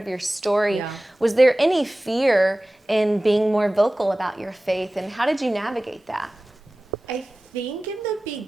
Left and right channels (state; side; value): normal; both; correlation 0.97